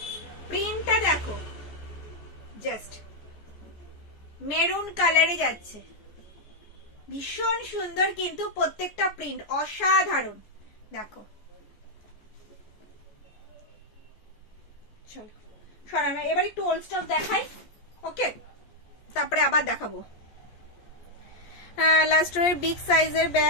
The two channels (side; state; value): right; late; 14 ms